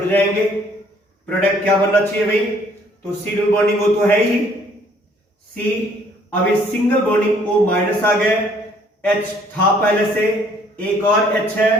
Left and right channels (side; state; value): both; normal; correlation 0.61